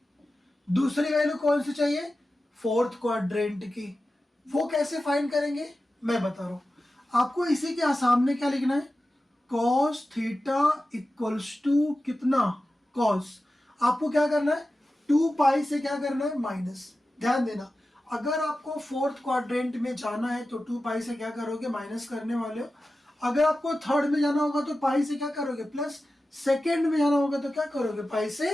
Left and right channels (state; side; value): normal; both; correlation 0.94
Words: दूसरी वैल्यू कौन सी चाहिए, 4th क्वाड्रेंट की। वो कैसे फाइंड करेंगे, मैं बता रहा हूँ आपको। इसी के सामने क्या लिखना है, cos थीटा इक्वल्स टू कितना, cos। आपको क्या करना है, 2π से क्या करना है, माइनस। ध्यान देना, अगर आपको 4th क्वाड्रेंट में जाना है तो 2π से क्या करोगे, माइनस करने वाले हो। अगर आपको 3rd में जाना होगा तो पाई से क्या करोगे, प्लस। 2nd में जाना होगा तो क्या करोगे, पाई